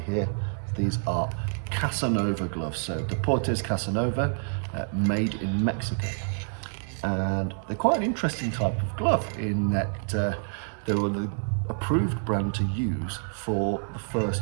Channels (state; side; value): silent; left; 57 dB below the other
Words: here, these are Casanova gloves. So Deportes Casanova, made in Mexico. And they're quite an interesting type of glove in that they were the approved brand to use for the